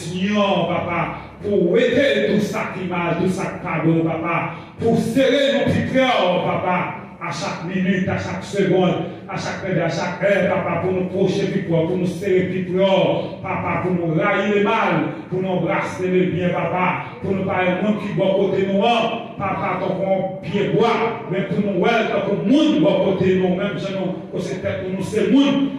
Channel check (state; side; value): identical; both; correlation 1.00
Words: Papa. Pour aider tout ça qui mal, tout ça qui pardonne, Papa. Pour serrer nos petits cœurs, Papa. À à chaque minute, à chaque seconde, à chaque heure, papa, pour nous procher plus fort, pour nous serrer plus fort, papa, pour nous railler le mal, pour nous embrasser le bien, papa, pour nous parler de monde qui bon côté nous, papa, tant qu'on pied bois, mais pour nous, tant qu'on monde bon côté nous, même si nous, c'est peut-être pour nous, c'est monde,